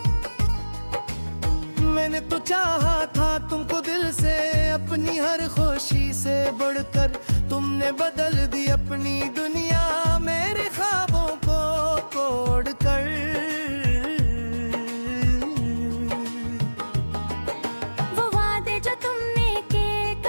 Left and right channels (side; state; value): both; inverted; correlation -1.00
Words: मैंने तो चाहा था तुमको दिल से, अपनी हर खुशी से बढ़कर। तुमने बदल दी अपनी दुनिया मेरे ख्वाबों को तोड़ कर। वो वादे जो तुमने के